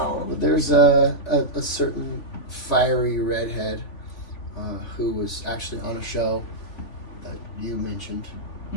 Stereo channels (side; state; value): right; late; 3.5 ms